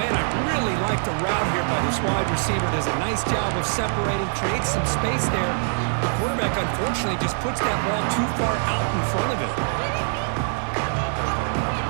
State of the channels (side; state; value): left; silent; 63 dB below the other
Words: man, I really like the route here by this wide receiver. Does a nice job of separating, creates some space there. The quarterback, unfortunately, just puts that ball too far out in front of him.